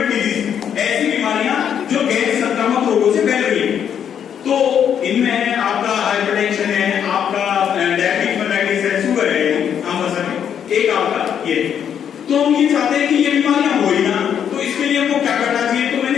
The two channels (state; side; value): quieter; right; 8.6 dB